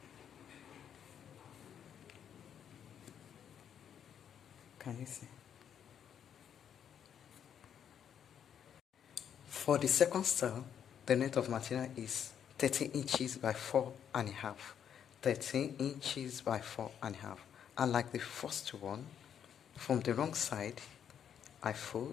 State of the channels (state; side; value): quieter; right; 8.7 dB